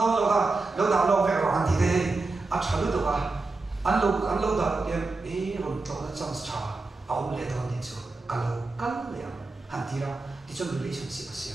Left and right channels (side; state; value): left; quieter; 3.5 dB